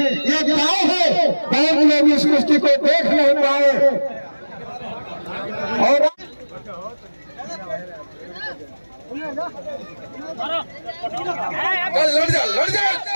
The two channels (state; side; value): inverted; both; correlation -1.00